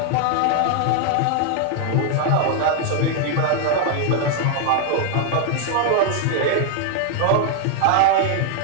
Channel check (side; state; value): both; different; correlation 0.00